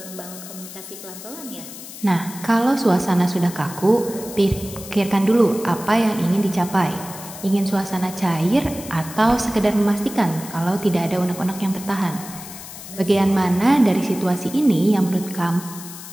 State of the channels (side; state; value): left; noise; hiss, 13 dB below the sound